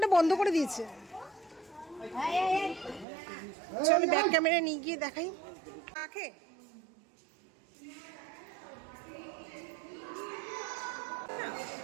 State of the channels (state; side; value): drops out; left; at 3.1 s